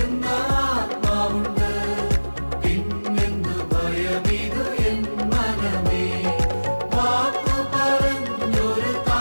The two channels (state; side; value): inverted; both; correlation -1.00